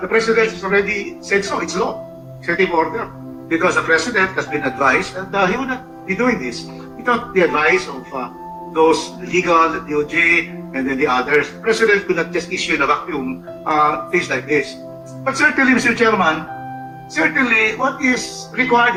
President has already said so, it's law, executive order. Because the President has been advised that he would not be doing this without the advice of those legal, the DOJ, and then the others. The President could not just issue in a vacuum things like this. But certainly, Mr. Chairman, certainly what is required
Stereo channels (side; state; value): both; identical; correlation 1.00